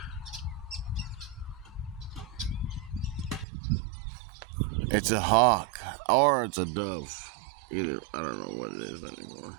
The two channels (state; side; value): drops out; left; at 3.5 s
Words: It's a hawk or it's a dove. Either, I don't know what it is anymore.